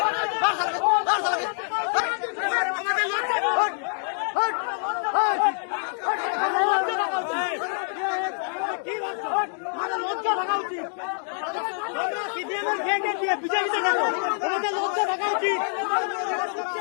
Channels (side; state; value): right; silent; 61 dB below the other